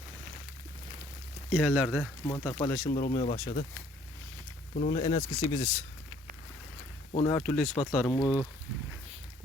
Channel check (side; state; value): both; normal; correlation 0.61